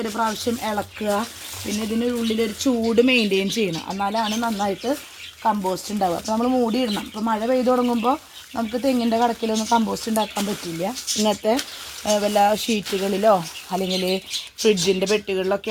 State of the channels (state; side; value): identical; both; correlation 1.00